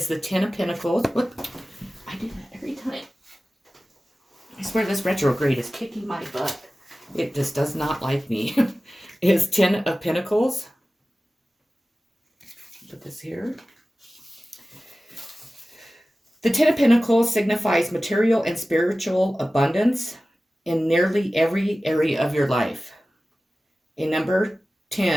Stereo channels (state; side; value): normal; both; correlation 0.96